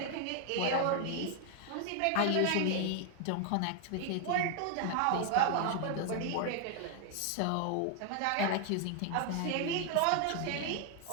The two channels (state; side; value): different; both; correlation 0.00